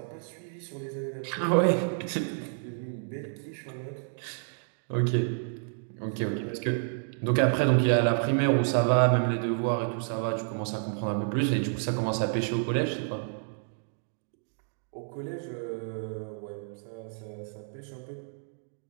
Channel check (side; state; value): left; silent; digital silence